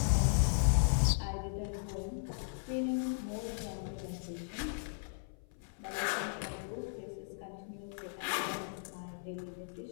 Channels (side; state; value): right; silent; 53 dB below the other